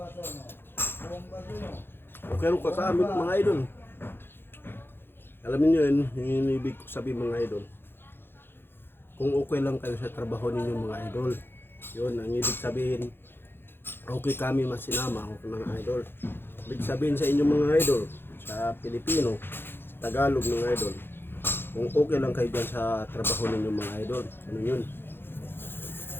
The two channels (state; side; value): late; right; 0.10 ms